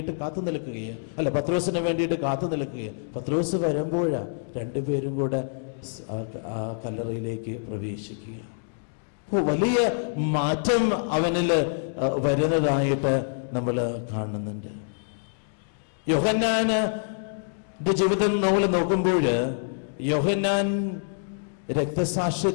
കാത്തു നിൽക്കുകയാണ്, അല്ല പത്രോസിന് വേണ്ടിയിട്ട് കാത്തു നിൽക്കുകയാണ്. പത്രോസ് വരുമ്പോഴാണ് രണ്ടുപേരും കൂടെ ആ കല്ലറയിലേക്ക് പ്രവേശിക്കുക. വലിയ മാറ്റം അവനില് വരുന്നതായിട്ട് നമ്മൾ കാണുന്നുണ്ട്. യോഹന്നാന്റെ ജീവിതം നമ്മൾ നോക്കുമ്പോൾ യോഹന്നാൻ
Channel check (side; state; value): right; silent; digital silence